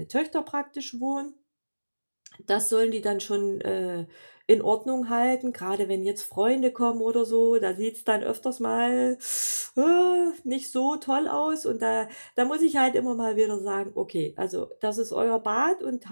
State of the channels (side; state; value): both; inverted; correlation -1.00